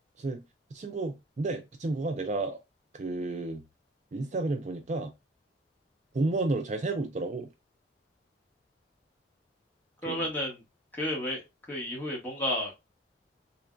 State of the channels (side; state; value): both; normal; correlation 0.44